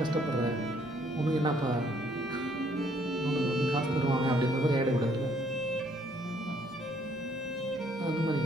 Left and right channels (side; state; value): both; normal; correlation 0.65